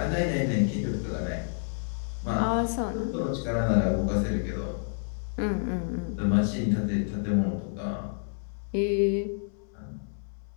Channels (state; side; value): silent; right; 59 dB below the other